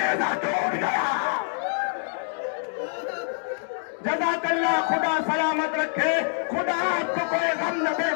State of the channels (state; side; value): silent; right; 58 dB below the other